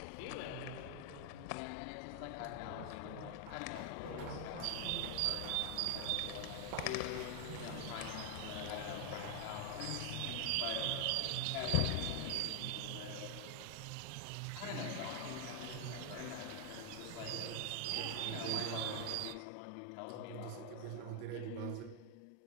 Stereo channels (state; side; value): different; both; correlation 0.00